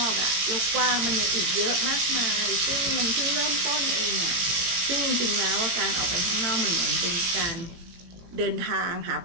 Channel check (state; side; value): late; left; 17 ms